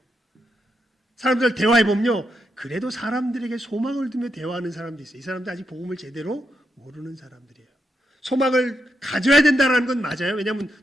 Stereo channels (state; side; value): normal; both; correlation 0.83